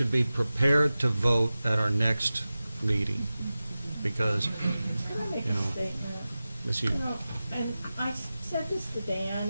be prepared to vote at our next meeting, because, Can I make you a know, statement? Miss You you. know, and I said this to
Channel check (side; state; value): both; inverted; correlation -0.95